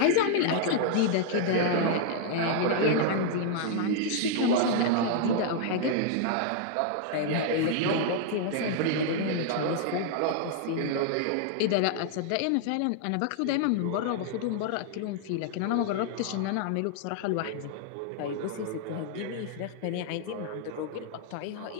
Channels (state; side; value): different; both; correlation -0.01